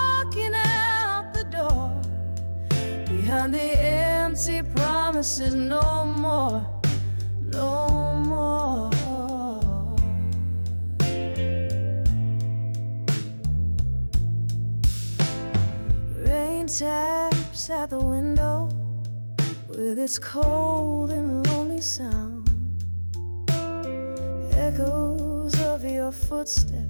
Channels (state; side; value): inverted; both; correlation -1.00